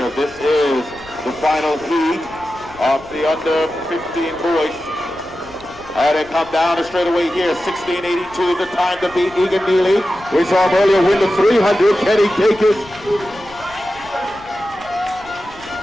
This is the final heat of the under 15 boys. And they come down the straightaway here. 16.82 is the time to beat Egan Neely. We saw him earlier win the 300. Can he take it?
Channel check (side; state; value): left; noise; rumble, 23 dB below the sound